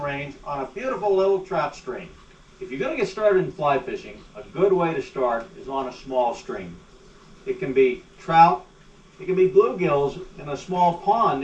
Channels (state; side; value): identical; both; correlation 1.00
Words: range on a beautiful little trout stream. If you're going to get started in fly fishing, a good way to start is on a small stream. It can be trout, it can be bluegills in a small pond